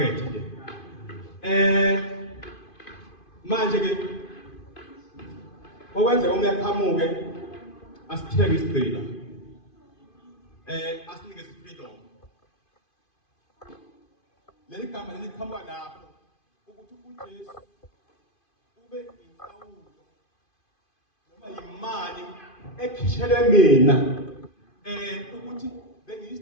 nje. Manje ke okwenza umyaqhamuke asithenge isigcina asinikeze freedom. Leli gama liqhamuka lapho ukuthi uJesu ube inhlawulo imali ekhishele mina ukuthi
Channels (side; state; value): right; late; 2.5 ms